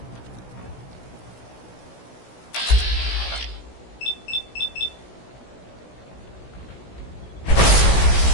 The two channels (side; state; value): right; late; 16 ms